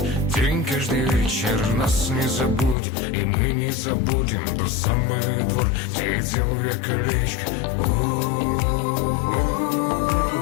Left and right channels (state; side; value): drops out; right; at 2.8 s